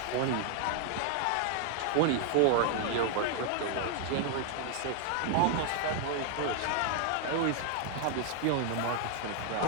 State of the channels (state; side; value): different; both; correlation 0.00